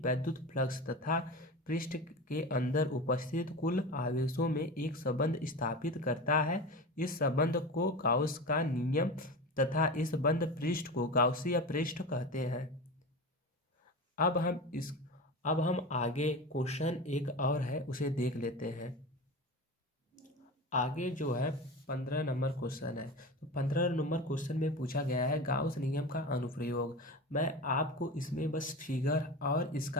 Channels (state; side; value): normal; both; correlation 0.28